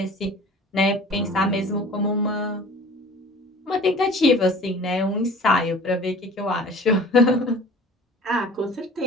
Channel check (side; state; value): both; normal; correlation 0.45